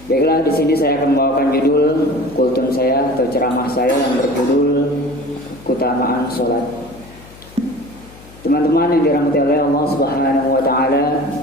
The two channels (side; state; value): left; noise; hum, 22 dB below the sound